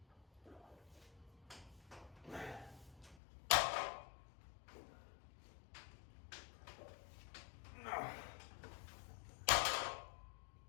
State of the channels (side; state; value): right; drops out; at 3.2 s